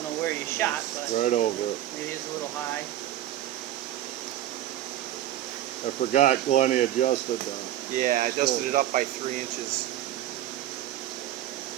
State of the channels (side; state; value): left; quieter; 13.2 dB